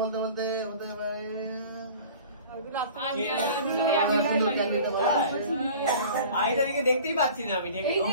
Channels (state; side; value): inverted; both; correlation -0.43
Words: বলতে হতে পারে আইটাকে দেখতেই পাচ্ছি না আমি।